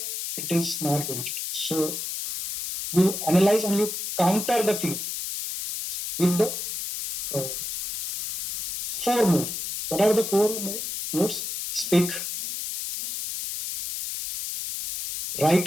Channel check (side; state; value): left; noise; hiss, 5 dB below the sound